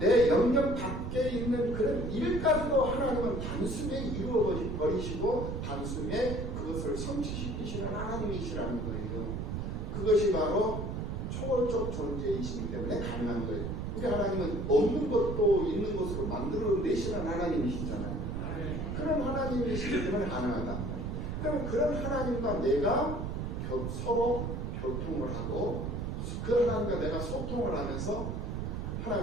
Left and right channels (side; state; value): right; noise; rumble, 3 dB below the sound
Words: 영역 밖에 있는 그런 일까지도 하나님은 단숨에 이루어 버리시고 단숨에 그것을 성취시키시는 하나님이시라는 거예요. 그것이 바로 초월적 존재이시기 때문에 가능한 거예요. 우리 하나님은 없는 것도 있는 것으로 만들어내시는 하나님이시잖아요. 그런 하나님이시기 때문에 가능하단 말이에요. 그럼 그런 하나님과 내가 서로 교통을 하고 그 하나님과 내가 소통을 하면서